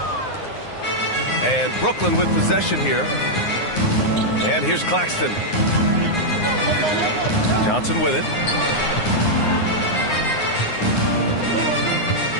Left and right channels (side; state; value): right; late; 9.7 ms